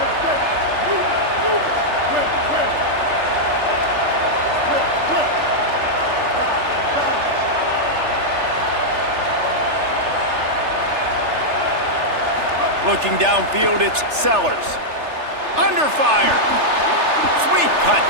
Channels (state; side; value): late; left; 3.3 ms